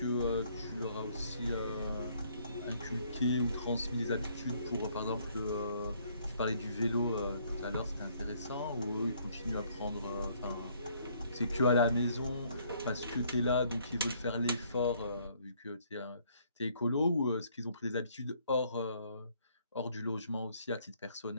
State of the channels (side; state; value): both; inverted; correlation -0.65